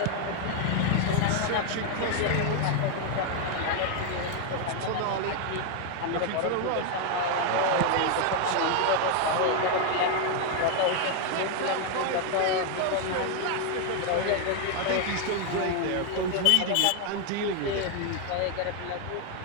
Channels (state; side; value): different; both; correlation 0.01